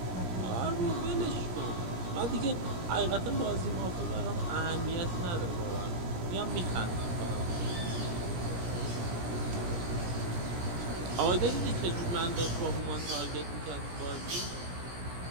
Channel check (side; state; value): left; late; 17 ms